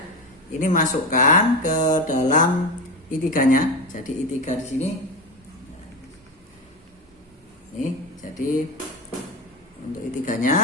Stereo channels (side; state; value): both; normal; correlation 0.20